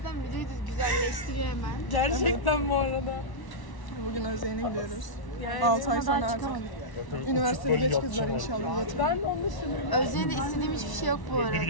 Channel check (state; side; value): late; right; 1.0 ms